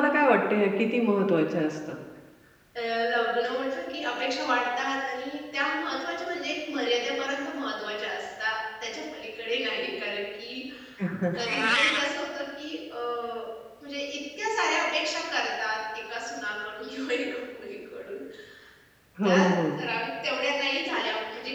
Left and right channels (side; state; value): both; identical; correlation 1.00